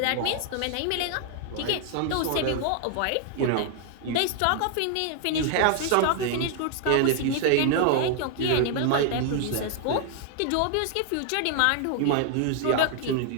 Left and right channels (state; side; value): different; both; correlation 0.00